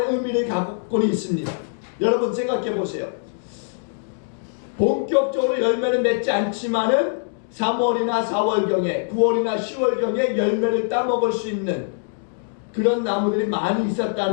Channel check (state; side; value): silent; right; digital silence